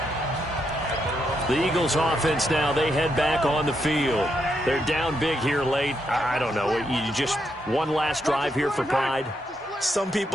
The Eagles offense now, they head back on the field. They're down big here late. I don't know, you just one last drive here for pride. Some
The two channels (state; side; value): normal; both; correlation 0.80